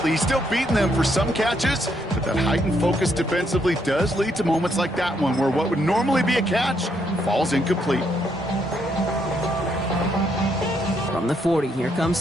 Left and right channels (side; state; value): both; normal; correlation 0.75